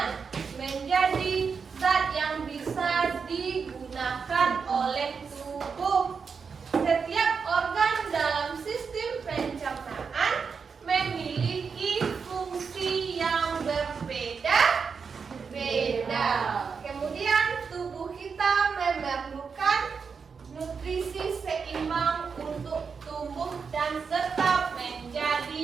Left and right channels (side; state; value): left; quieter; 5.7 dB